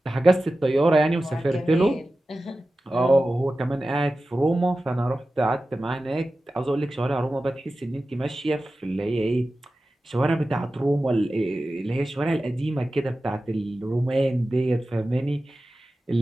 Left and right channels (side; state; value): both; normal; correlation 0.94